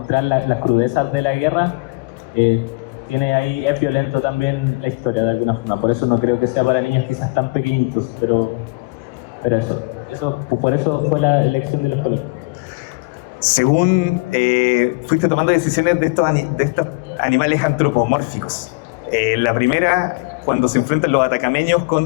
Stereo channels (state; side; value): quieter; right; 27.8 dB